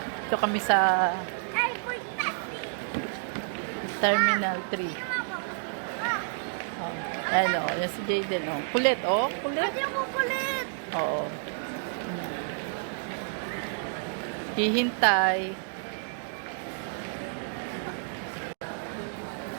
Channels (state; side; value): silent; left; digital silence